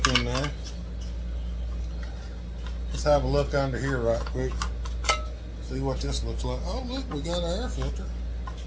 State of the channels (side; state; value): both; identical; correlation 1.00